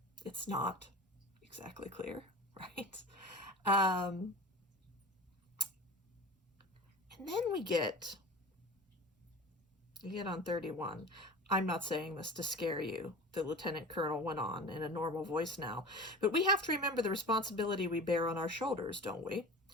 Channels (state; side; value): normal; both; correlation 0.36